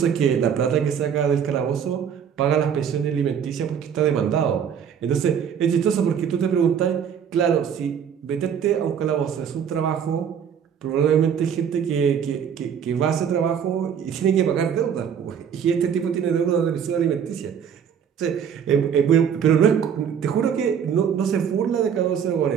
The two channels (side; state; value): left; quieter; 7.9 dB